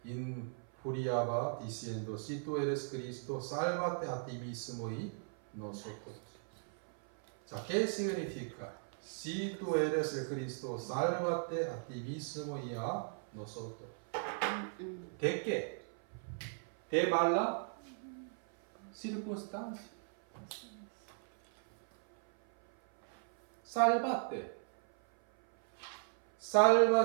injuriaba diciendo: si tú eres Cristo, sálvate a ti mismo y nosotros. ¿Qué significa? Si tú eres el Cristo, sálvate a ti mismo y a nosotros. ¿De qué? ¿De mala circunstancia? Sálvate.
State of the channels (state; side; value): silent; left; 53 dB below the other